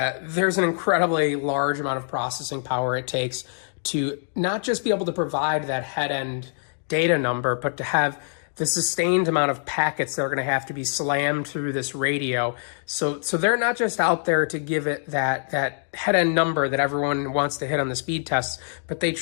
there's an incredibly large amount of processing power it takes to not just be able to provide that head-end data number, but to have the sustained amount of packets that are going to have to be slammed through this radio. So they're not just out there to give it that head-end number that everyone wants to hit on the speed tests, but they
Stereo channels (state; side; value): silent; right; digital silence